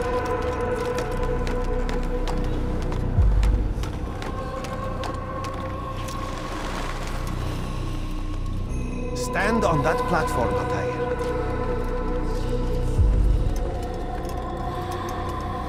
Stand on that platform, Altair.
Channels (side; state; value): both; identical; correlation 1.00